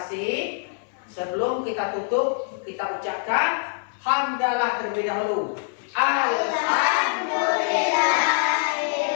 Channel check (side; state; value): right; silent; 60 dB below the other